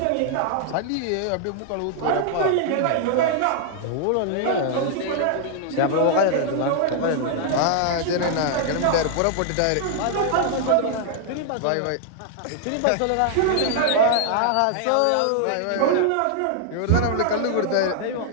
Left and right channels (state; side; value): different; both; correlation 0.00